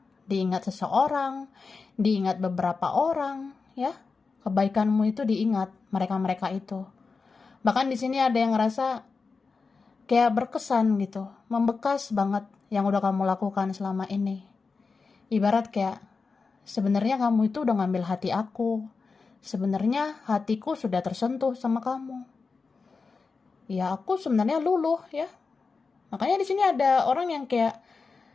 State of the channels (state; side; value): quieter; right; 4.6 dB